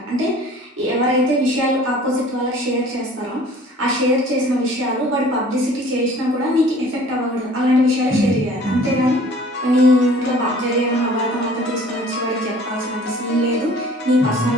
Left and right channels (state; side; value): normal; both; correlation 0.49